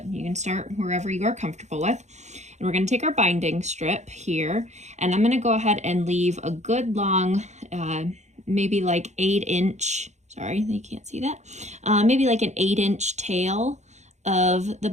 you can start wherever you are comfortable with. And we're gonna take our binding strip here, and I'm gonna go ahead and leave a good long, maybe like 8-inch, sorry, you can't see that, maybe like an 8-inch tail of the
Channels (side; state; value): left; late; 0.33 ms